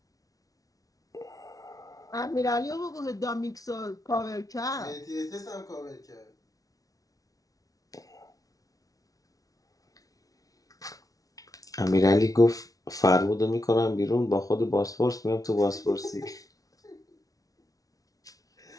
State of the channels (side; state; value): right; late; 0.18 ms